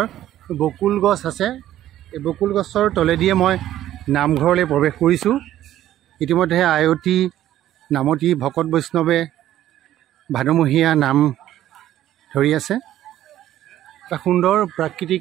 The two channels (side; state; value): left; quieter; 12.8 dB